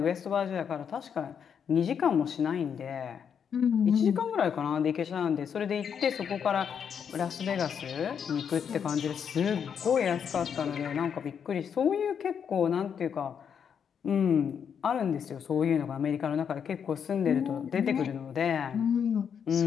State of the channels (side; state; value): right; quieter; 7.5 dB